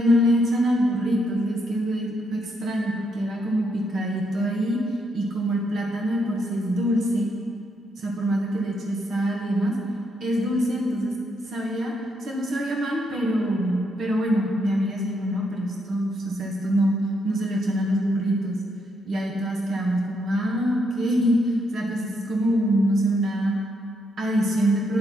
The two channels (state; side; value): normal; both; correlation 0.77